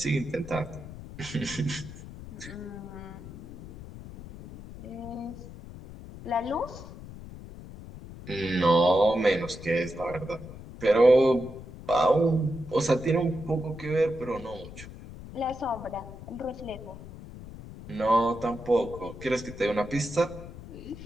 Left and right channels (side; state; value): left; noise; rumble, 14 dB below the sound